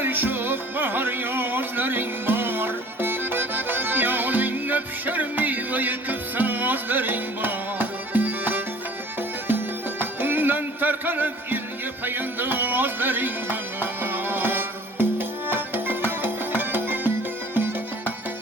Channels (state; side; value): normal; both; correlation 0.49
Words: şok bahar yazların var. Yalınla pişer meyve yıkıp sazların var. Ondan tarkanıp ilge payandazların var.